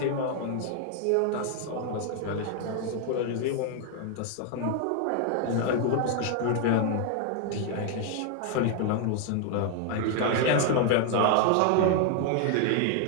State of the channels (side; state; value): both; different; correlation 0.00